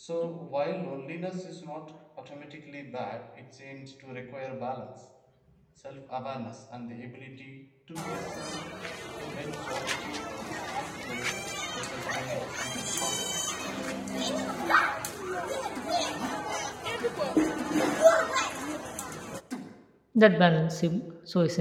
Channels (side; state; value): both; identical; correlation 1.00